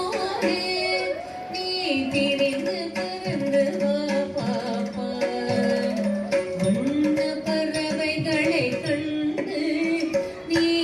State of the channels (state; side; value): identical; both; correlation 1.00